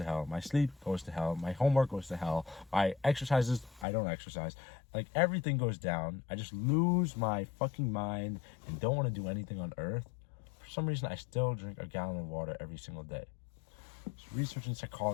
hell, my sleep goes to hell, my homework goes to hell, my exercises, I don't exercise, like everything goes down. I just lose my fucking mind and don't want to do anything on earth. For some reason, I still drink a gallon of water every single day. It's research in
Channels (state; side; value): drops out; right; at 3.9 s